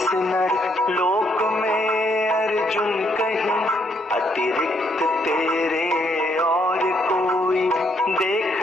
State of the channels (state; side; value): normal; both; correlation 0.72